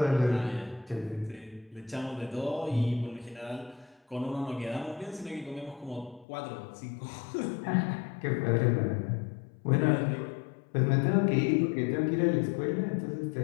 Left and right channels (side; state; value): right; drops out; at 6.2 s